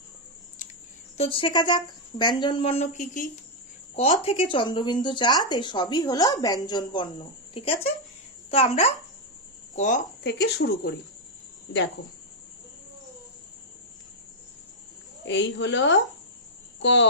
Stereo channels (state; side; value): normal; both; correlation -0.03